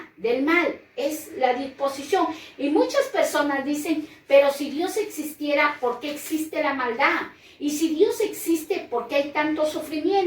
del mal. Es la disposición. Y muchas personas dicen, pero si Dios existiera, ¿por qué existe la maldad? Y si Dios existe, ¿por qué hay tanto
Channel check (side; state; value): both; identical; correlation 1.00